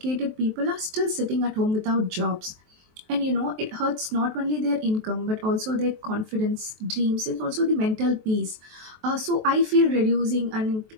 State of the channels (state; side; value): late; left; 23 ms